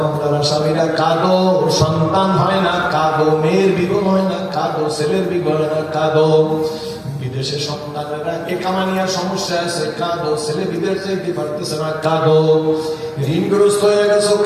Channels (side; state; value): both; identical; correlation 1.00